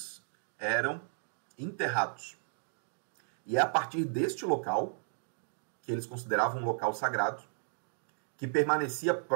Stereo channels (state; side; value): silent; left; digital silence